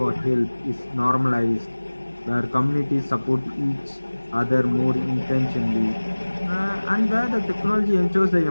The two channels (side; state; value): both; inverted; correlation -1.00